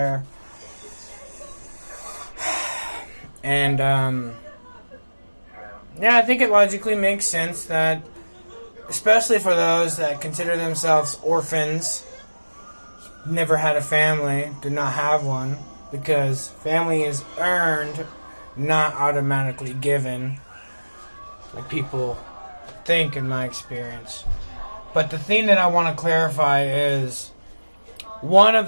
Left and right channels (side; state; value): both; inverted; correlation -1.00